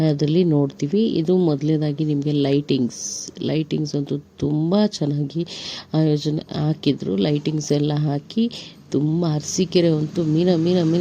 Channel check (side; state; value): both; identical; correlation 1.00